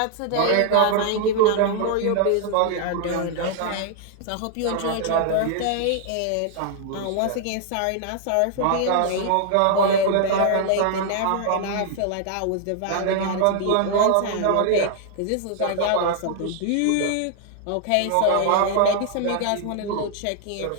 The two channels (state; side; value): different; both; correlation 0.00